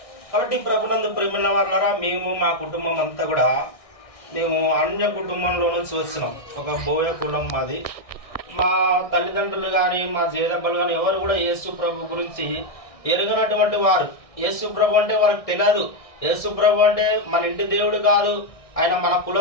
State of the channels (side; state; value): right; late; 1.6 ms